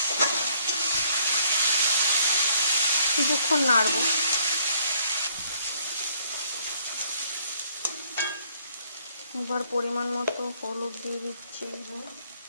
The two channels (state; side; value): inverted; both; correlation -0.64